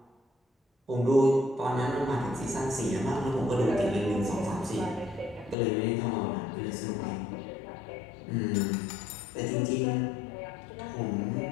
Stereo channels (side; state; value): right; drops out; at 5.6 s